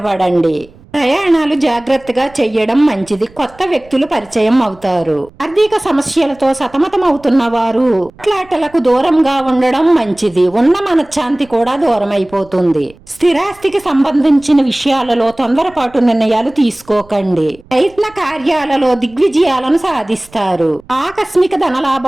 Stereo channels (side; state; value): right; noise; rumble, 26 dB below the sound